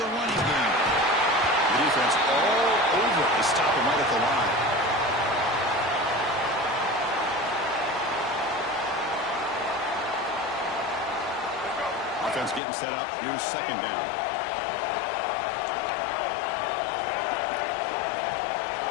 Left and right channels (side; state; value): right; drops out; at 12.6 s